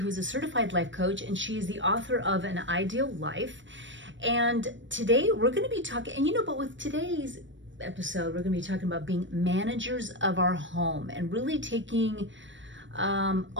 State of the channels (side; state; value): left; late; 0.55 ms